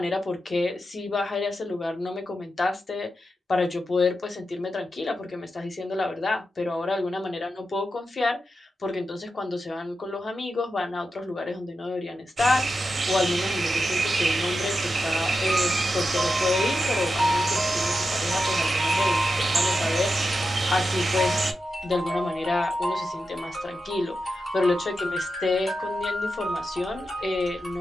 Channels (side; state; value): both; normal; correlation 0.89